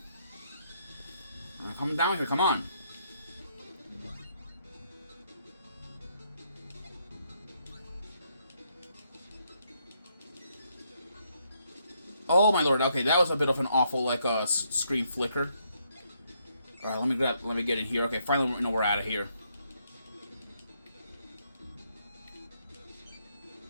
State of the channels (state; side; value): inverted; both; correlation -0.74